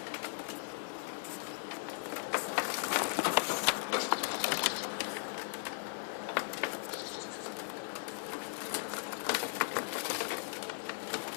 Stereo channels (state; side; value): silent; right; 53 dB below the other